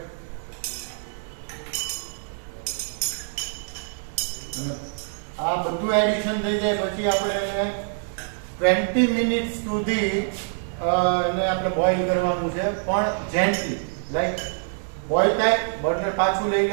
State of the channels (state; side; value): silent; left; digital silence